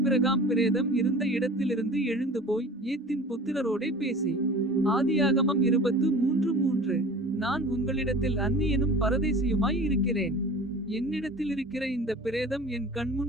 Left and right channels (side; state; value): both; normal; correlation 0.40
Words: பிரேதம் இருந்த இடத்திலிருந்து எழுந்து போய் ஏத்தின் புத்திரரோடே பேசி. ஆதியாகமம் 23:3. நான் உங்களிடத்தில் அந்நியனும் பரதேசியுமாய் இருக்கிறேன். என்னிடத்தில் இருக்கிற இந்த பிரேதம் என்